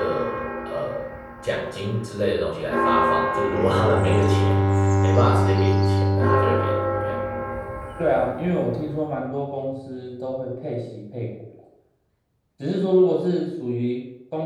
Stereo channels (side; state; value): both; identical; correlation 1.00